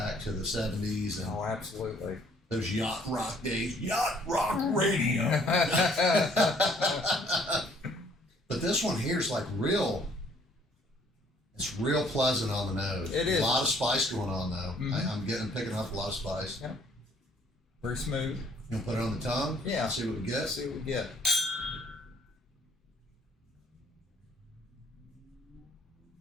to the 70s. And, Oh, absolutely. Those yacht rock days, yacht rock radio. But this one here is like real. It's real pleasant on the nose. It is. A lot of spice going on though. Mhm. I'm picking up a lot of spice. Yeah. Very smooth. You gonna put it on the tongue? Yeah. See what we get. See what we get.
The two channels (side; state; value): both; normal; correlation 0.61